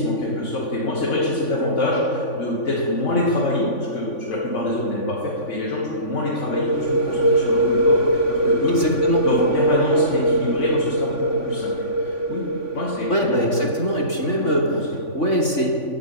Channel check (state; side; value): late; right; 3.5 ms